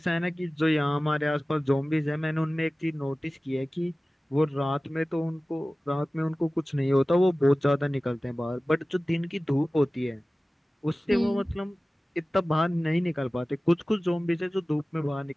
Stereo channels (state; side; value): normal; both; correlation 0.97